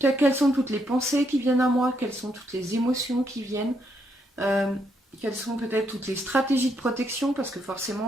sont toutes les pensées qui viennent à moi, quelles sont toutes les émotions qui viennent, quelles sont peut-être toutes les stratégies de protection, parce que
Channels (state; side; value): normal; both; correlation 0.76